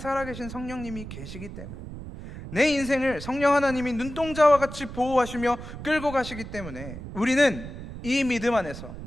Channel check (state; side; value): noise; right; rumble, 11 dB below the sound